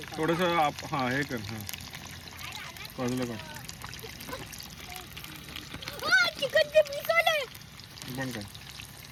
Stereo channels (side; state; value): both; identical; correlation 1.00